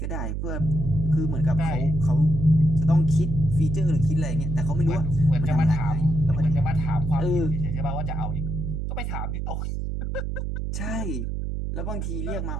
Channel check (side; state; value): right; noise; hum, 3 dB below the sound